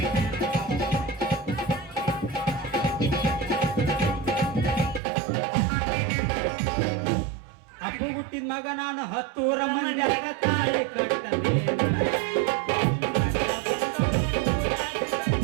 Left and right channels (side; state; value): left; drops out; at 5.0 s